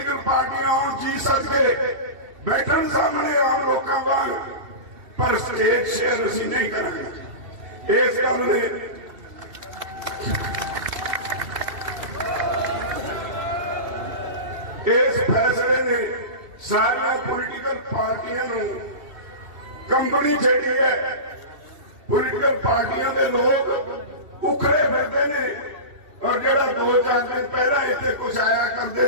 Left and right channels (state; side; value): late; left; 2.7 ms